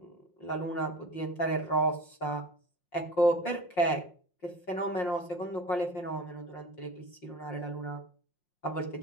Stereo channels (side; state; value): right; late; 5.6 ms